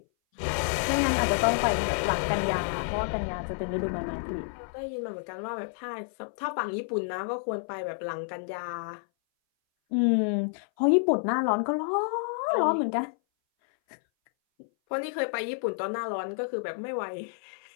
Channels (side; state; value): right; silent; 57 dB below the other